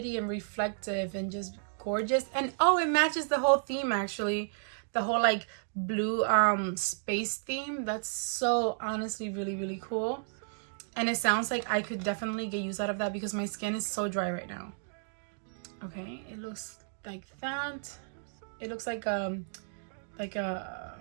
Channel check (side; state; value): left; silent; digital silence